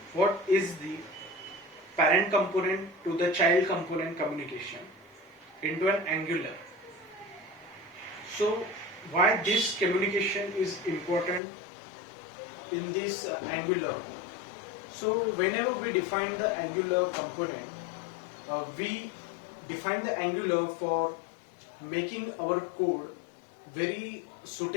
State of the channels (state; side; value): drops out; right; at 11.4 s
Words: what is the parent component to the child component communication into an Angular. So why this communication is important in this Angular. So whenever we define the Angular component, we define the Angular for making our code very